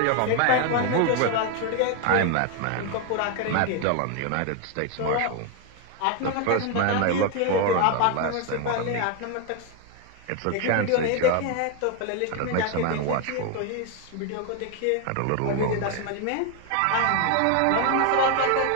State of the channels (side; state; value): both; different; correlation 0.01